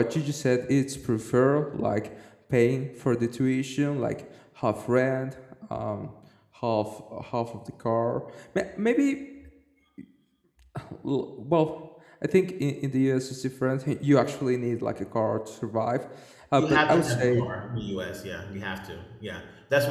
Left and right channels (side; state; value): both; identical; correlation 1.00